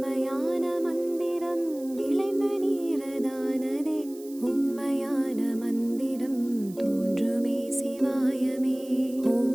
மந்திரம் விளைந்த நீரதானதே உண்மையான மந்திரம் தோன்றுமே சிவாயமே. ஓம்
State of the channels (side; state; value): right; noise; hiss, 21 dB below the sound